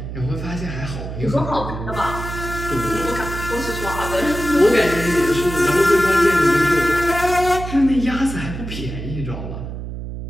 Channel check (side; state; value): right; noise; hum, 8 dB below the sound